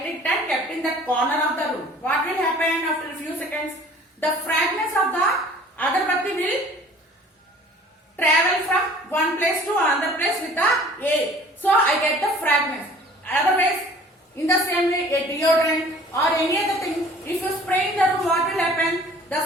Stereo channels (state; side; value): normal; both; correlation 0.50